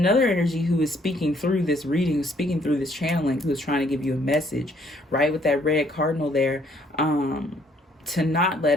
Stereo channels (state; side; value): normal; both; correlation 0.65